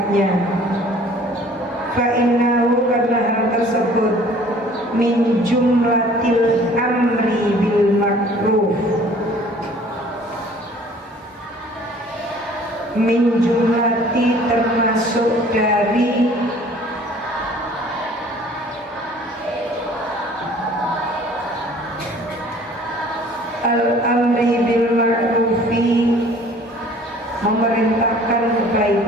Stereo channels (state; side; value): normal; both; correlation 0.52